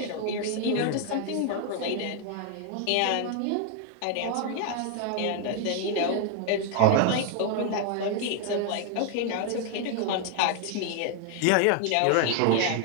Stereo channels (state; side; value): different; both; correlation 0.00